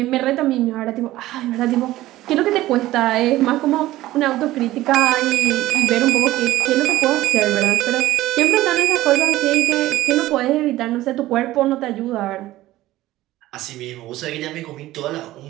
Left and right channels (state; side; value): quieter; left; 16.1 dB